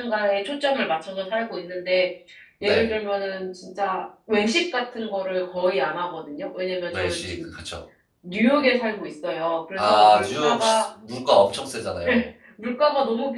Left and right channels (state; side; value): identical; both; correlation 1.00